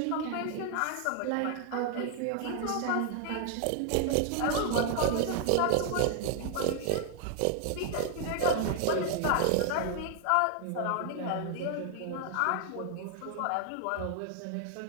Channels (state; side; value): different; both; correlation 0.00